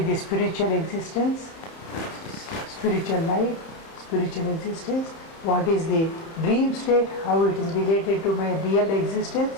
the spiritual existence, spiritual life, spiritual existence? What is the dream state, how it is related to my real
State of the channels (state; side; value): late; right; 31 ms